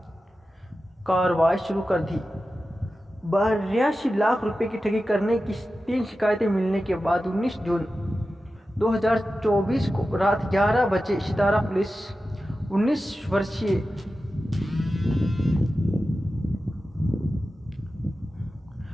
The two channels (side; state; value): both; normal; correlation 0.93